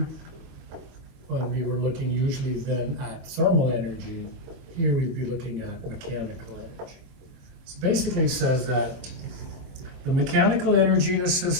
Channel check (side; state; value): left; late; 24 ms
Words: when we were looking usually then at thermal energy. Here we'd be looking at mechanical energy. So basically it says that the mechanical energy in a